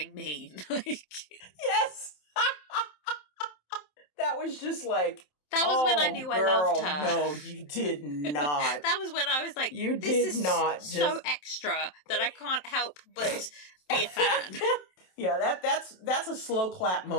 mean. Yes! That was just like, that was when I knew girl, I loved her. No, you did not. That was when I was like, you this did not is so extra that I can't help but be a fan. Yeah, that's a slow clap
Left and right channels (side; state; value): right; late; 27 ms